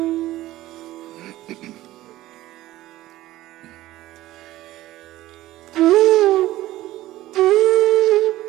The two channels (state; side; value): quieter; left; 15.9 dB